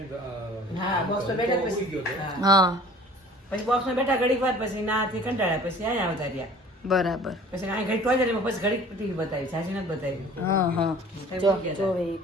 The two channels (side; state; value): both; normal; correlation 0.48